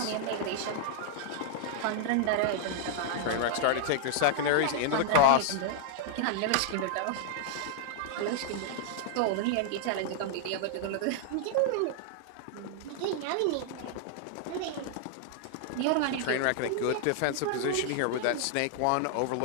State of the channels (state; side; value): different; both; correlation -0.01